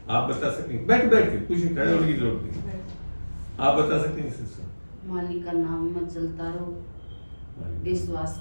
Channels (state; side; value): inverted; both; correlation -1.00